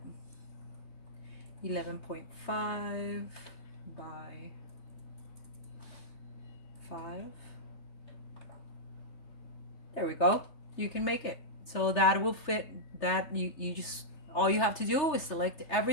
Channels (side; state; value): right; late; 3.3 ms